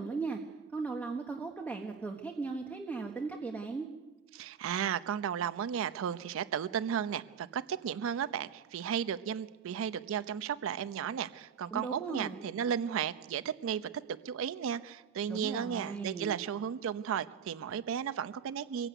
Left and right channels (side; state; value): left; quieter; 7.2 dB